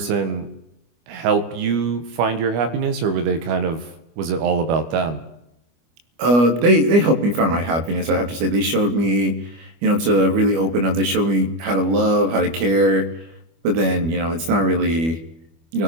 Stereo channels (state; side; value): late; left; 25 ms